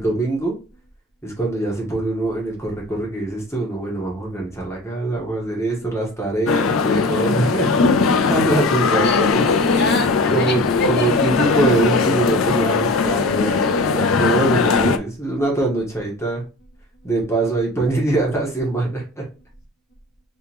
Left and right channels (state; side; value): normal; both; correlation 0.38